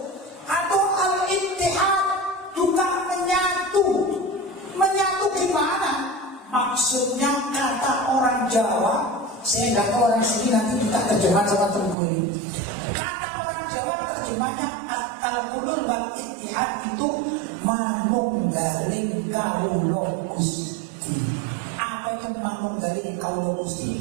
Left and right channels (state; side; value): drops out; left; at 12.0 s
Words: Atau al-ittihad juga menyatu. Menyatu gimana? Maksudnya kata orang Jawa, saya nggak tahu orang sini, nanti kita terjemah sama Tengku ini. Kata orang Jawa terjemahnya al-hulul wal ittihad itu manunggaling kawula Gusti. Apa itu manunggaling kawula